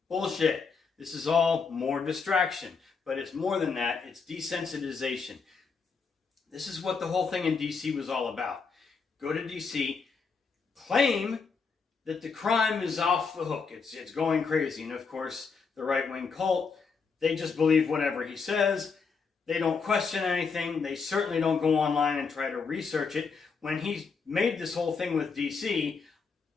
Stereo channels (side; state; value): right; quieter; 5.2 dB